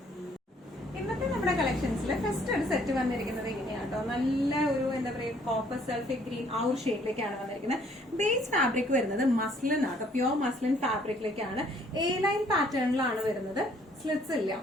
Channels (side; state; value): both; normal; correlation 0.62